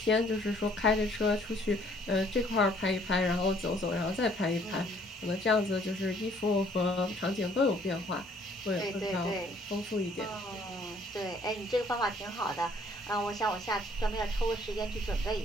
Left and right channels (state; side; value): normal; both; correlation 0.61